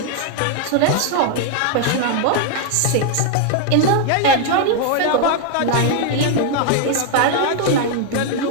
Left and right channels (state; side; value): different; both; correlation 0.00